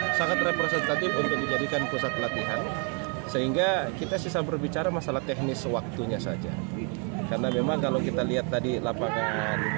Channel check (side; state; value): left; quieter; 37.6 dB